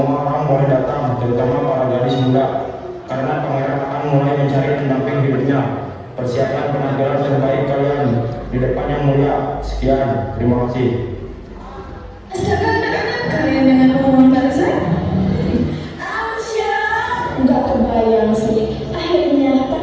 orang boleh datang, terutama para gadis muda, karena pangeran akan mulai mencari pendamping hidupnya. Persiapkan penampilan terbaik kalian di depan Yang Mulia. Sekian, terima kasih. Astaga anak-anak, kalian dengan pengumuman barusan? Nggak kebayang yang sulit. Akhirnya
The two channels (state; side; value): identical; both; correlation 1.00